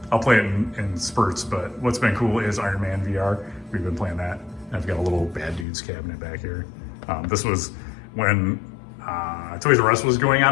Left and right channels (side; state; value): right; drops out; at 5.7 s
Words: play it in spurts, but what's been cool is Iron Man VR. We've been playing that. And I've got a little Bad Dudes cabinet back here. This was when Toys R Us was going